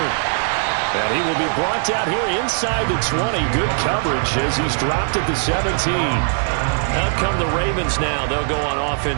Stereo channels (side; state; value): left; silent; digital silence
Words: And he will be brought down here inside the 20. Good coverage as he's dropped at the 17. Out come the Ravens now. They'll go on